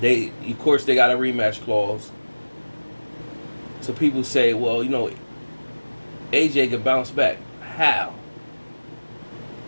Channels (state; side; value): inverted; both; correlation -1.00